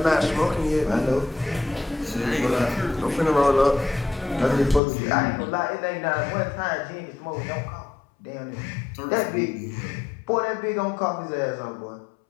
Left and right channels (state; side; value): drops out; right; at 4.8 s